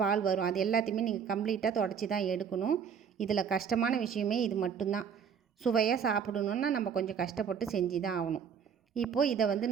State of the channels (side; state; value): left; quieter; 7.2 dB